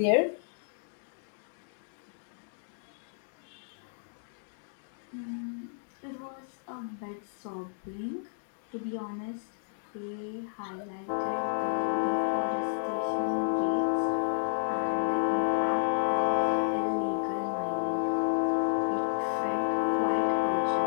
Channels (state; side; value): silent; right; digital silence